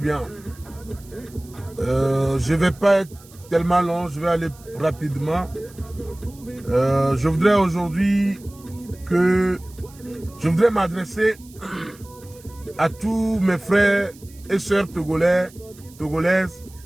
Je ne vais pas être tellement long, je vais aller rapidement. Je voudrais aujourd'hui m'adresser à tous mes frères et sœurs togolaises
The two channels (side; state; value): right; noise; hiss, 24 dB below the sound